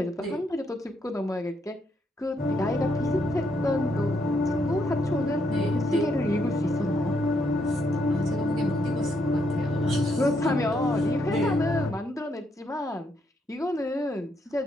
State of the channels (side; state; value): both; normal; correlation 0.76